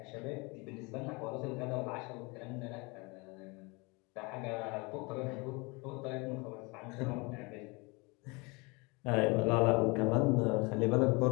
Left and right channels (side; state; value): right; quieter; 27.7 dB